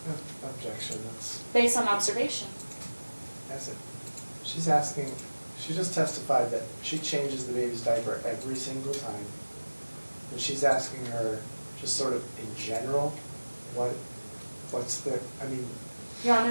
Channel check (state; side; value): inverted; both; correlation -1.00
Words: Objection, that's, Based on observation. she's asking, she just testified that she changes the baby's diaper every single time. And she's asking her, just sort of in general, what's the, I mean, Your